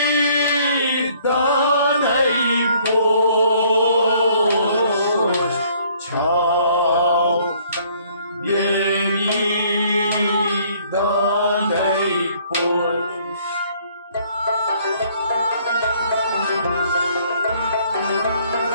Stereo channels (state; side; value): inverted; both; correlation -0.61